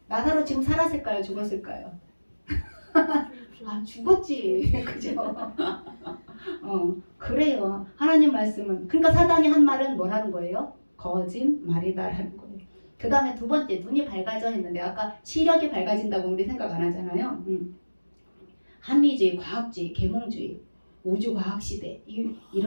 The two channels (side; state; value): both; inverted; correlation -1.00